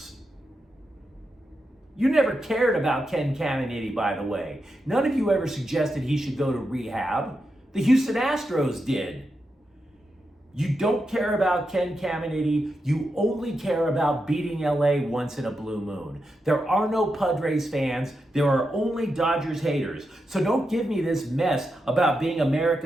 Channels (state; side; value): normal; both; correlation 0.87